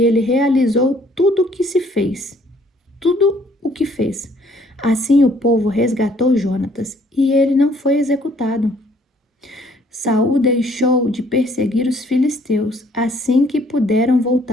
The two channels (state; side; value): normal; both; correlation 0.62